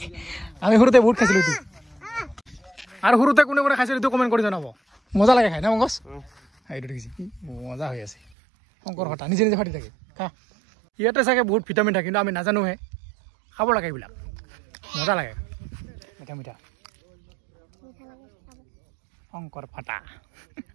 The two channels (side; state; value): left; drops out; at 8.2 s